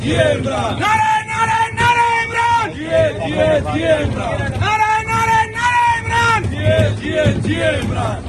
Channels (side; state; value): both; identical; correlation 1.00